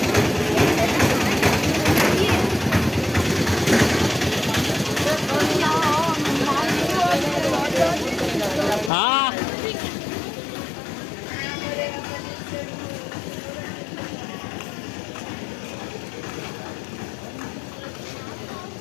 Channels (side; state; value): right; drops out; at 8.9 s